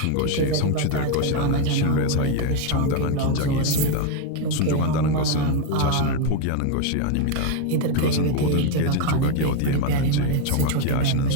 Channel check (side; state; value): both; different; correlation 0.01